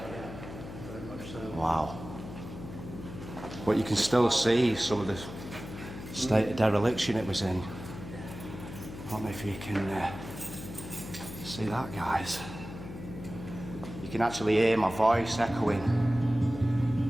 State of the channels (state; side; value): noise; left; hum, 11 dB below the sound